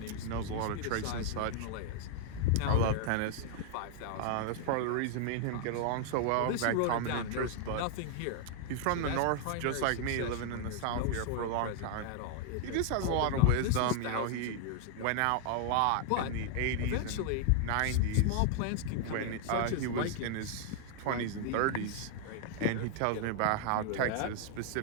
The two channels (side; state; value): both; different; correlation 0.00